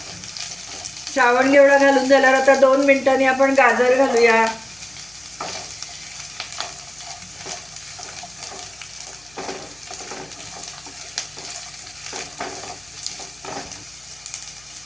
श्रावण घेवडा घालून झाल्यावर आता 2 मिनिटांनी आपण गाजर घालूया।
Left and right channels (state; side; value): noise; left; hum, 28 dB below the sound